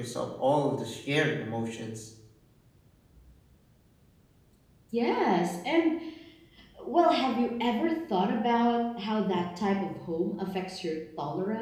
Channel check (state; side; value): identical; both; correlation 1.00